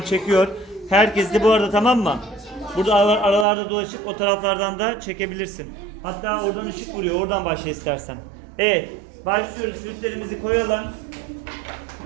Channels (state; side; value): drops out; left; at 3.5 s